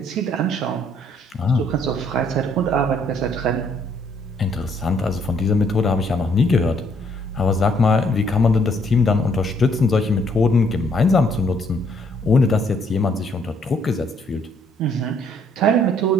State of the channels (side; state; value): both; normal; correlation 0.66